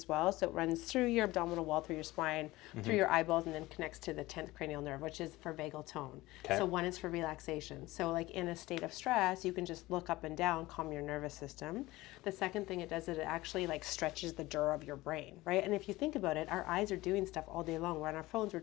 well. So it runs through your abdominal wall, through your spine, through your eyeballs, and then connects to the 10th cranial nerve, which is for vagal tone. So one is for relaxation. So in a state of stress, you can just look up and down, calm your nervous system. The second thing it does is it actually stretches the dura of your brain, right? And if you think about it, our eyes are doing stuff all day long. We're on our phones, we're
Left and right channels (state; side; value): quieter; right; 19.0 dB